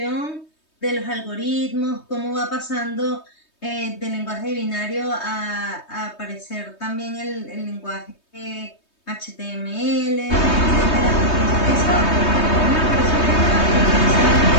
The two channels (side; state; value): right; late; 3.2 ms